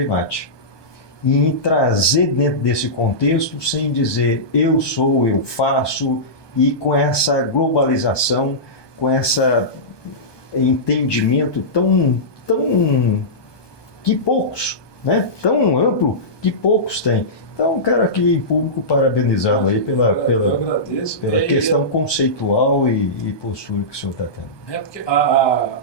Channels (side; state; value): right; late; 1.2 ms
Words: em trazer dentro desse contexto, sem dizer eu sou, eu faço, e com essa globalização, com esse entendimento tão que poucos, né? Tão amplo que poucos têm. Então, quero aqui em público parabenizá-lo aí pela questão conceitual e postura que o senhor está tendo. Porque